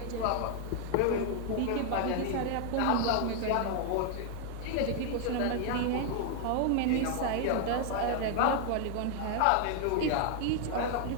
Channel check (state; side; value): different; both; correlation 0.00